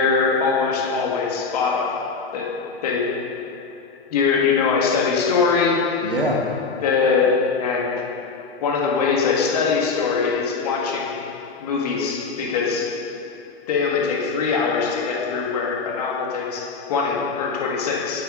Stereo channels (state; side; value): quieter; right; 4.7 dB